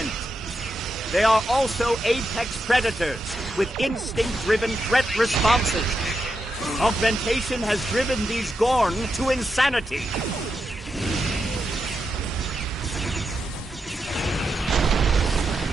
They are also apex predators, with instinct-driven threat responses. Augmentation has driven these Gorn to insanity.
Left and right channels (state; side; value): normal; both; correlation 0.86